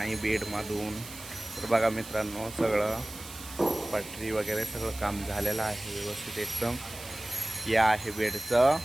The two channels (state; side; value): noise; right; hiss, 14 dB below the sound